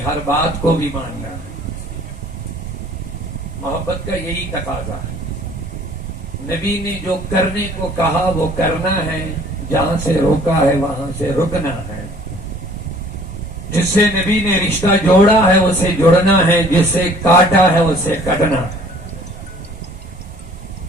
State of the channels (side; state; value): both; normal; correlation 0.53